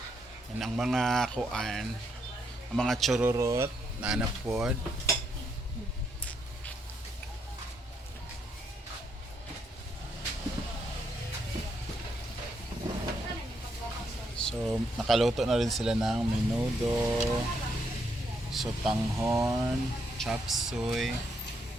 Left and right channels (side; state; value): both; normal; correlation 0.76